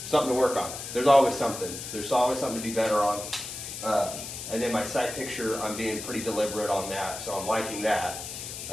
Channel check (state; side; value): noise; left; hiss, 8 dB below the sound